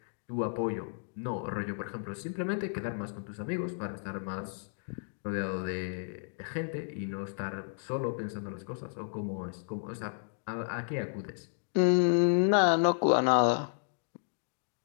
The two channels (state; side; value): silent; right; digital silence